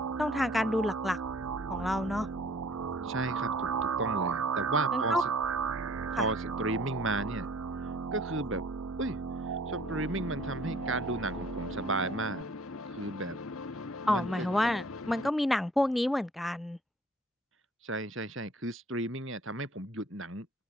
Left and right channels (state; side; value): normal; both; correlation 0.54